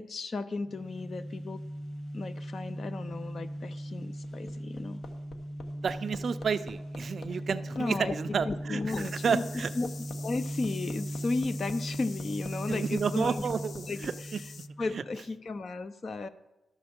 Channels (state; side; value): normal; both; correlation 0.88